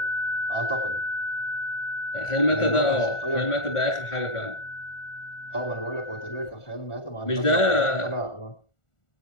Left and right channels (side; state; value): right; late; 1.4 ms